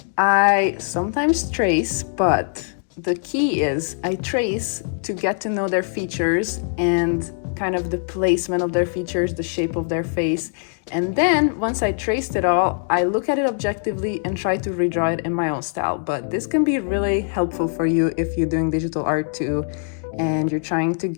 I sometimes trace, but the key is I trace to get to know their features and kind of the placement of their features, the shape of their face. And then once I traced it all, I look at it objectively and try to redraw it in my own style. But this can be really helpful for you if you're doing digital art too, and you're trying to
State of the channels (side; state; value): right; silent; 64 dB below the other